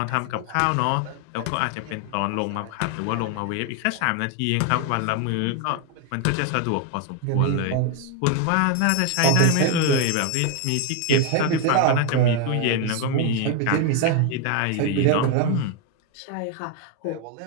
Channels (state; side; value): different; both; correlation 0.01